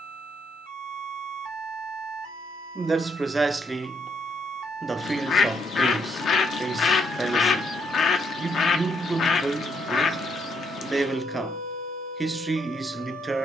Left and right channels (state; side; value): normal; both; correlation 0.74